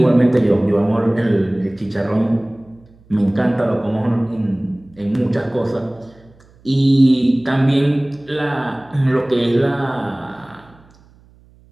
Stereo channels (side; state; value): right; noise; hum, 28 dB below the sound